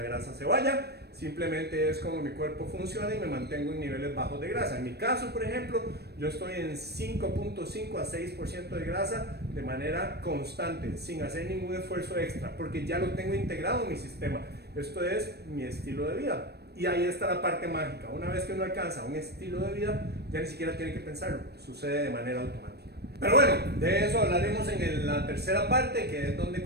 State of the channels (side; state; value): left; late; 0.47 ms